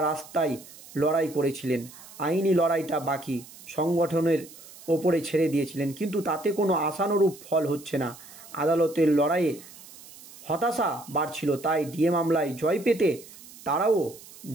রাস্তায় লড়াই করেছিলেন, আইনি লড়াইটা বাকি সংগঠনের ওপরে ছেড়ে দিয়েছিলেন, কিন্তু তাতে কোনো আশানুরূপ ফল হচ্ছে না। আদালতের লড়াইয়ে হতাশা বাড়ছিল, তাই ডিএ মামলায় জয় পেতে তারাও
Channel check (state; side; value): noise; right; hiss, 19 dB below the sound